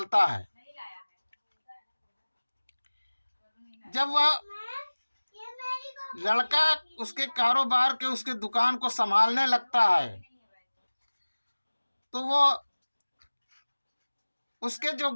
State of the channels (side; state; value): both; inverted; correlation -1.00